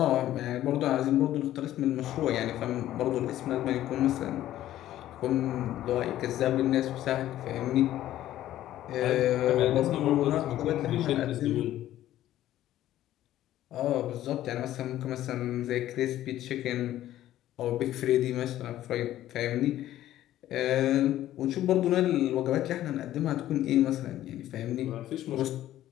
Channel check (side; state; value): right; quieter; 13.4 dB